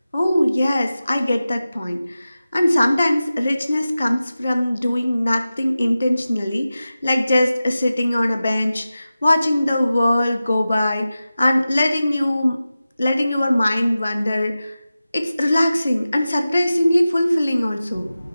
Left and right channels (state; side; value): inverted; both; correlation -0.94